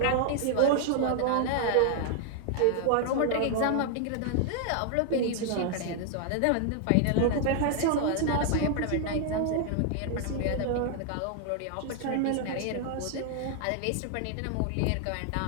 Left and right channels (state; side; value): different; both; correlation 0.00